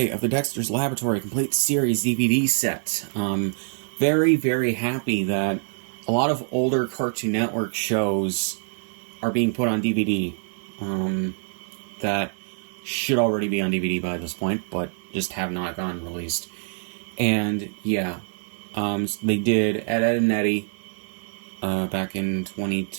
of the Dexter's Laboratory Complete Series DVD set. Very, very happy that a lot of older Cartoon Network shows are being put on DVD. That should already be on DVD by this point, but just have not gotten released. And yeah, they did Ed, Ed, and Eddie back in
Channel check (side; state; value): left; silent; 62 dB below the other